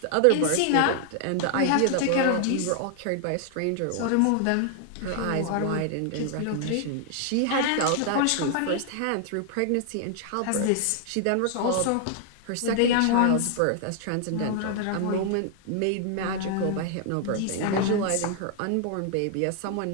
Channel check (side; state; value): both; different; correlation 0.00